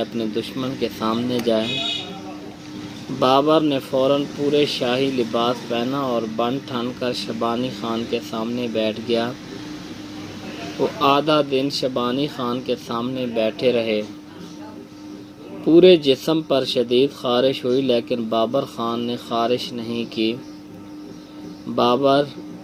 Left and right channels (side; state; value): both; identical; correlation 1.00